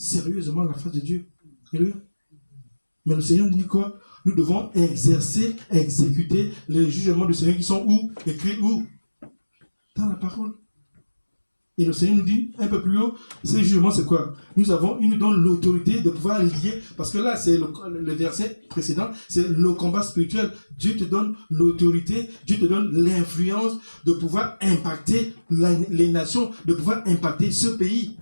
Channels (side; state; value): both; inverted; correlation -1.00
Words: la face de Dieu. Alléluia. Mais le Seigneur nous dit quoi? Nous devons exécuter les jugements du Seigneur qui sont où? Écrits où? Dans la parole. Et le Seigneur nous dit un peu plus haut, ces jugements c'est quoi? Il nous donne l'autorité de pouvoir lier, parce que là c'est le verset précédent, c'est le combat spirituel. Dieu te donne l'autorité, Dieu te donne l'influence de pouvoir impacter les nations, de pouvoir impacter ce pays.